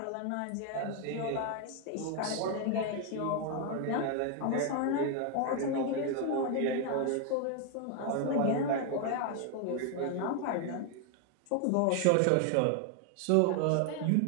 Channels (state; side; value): different; both; correlation 0.01